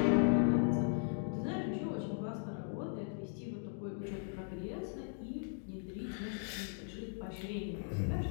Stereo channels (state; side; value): silent; right; digital silence